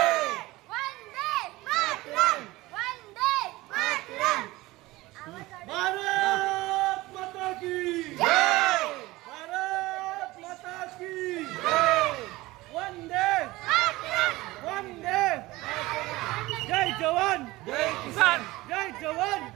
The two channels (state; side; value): quieter; left; 19.6 dB